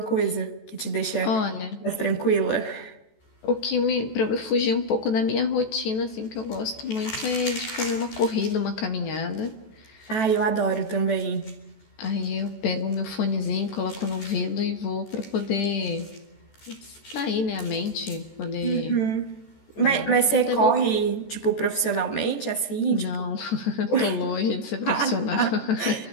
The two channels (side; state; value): right; late; 14 ms